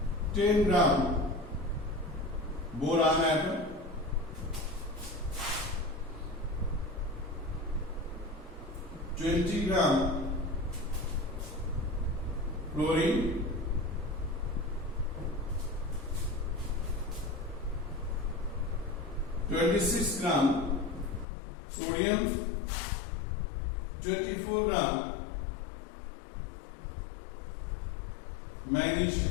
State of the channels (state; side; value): drops out; right; at 21.2 s